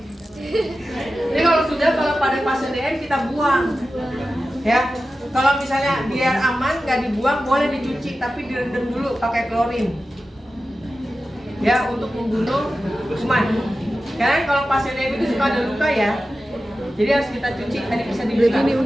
Ini kalau pada pasien DM kita buang. Ya. Kalau misalnya biar aman nggak dibuang, boleh dicuci tapi direndam dulu pakai klorin. Ya, untuk membunuh kuman. Karena kalau pasien DM itu suka ada luka ya. Jadi harus kita cuci, tadi bisa dibuka. Berarti ini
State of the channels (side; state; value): both; normal; correlation 0.93